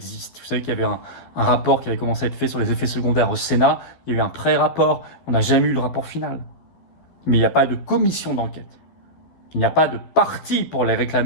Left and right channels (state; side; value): late; right; 12 ms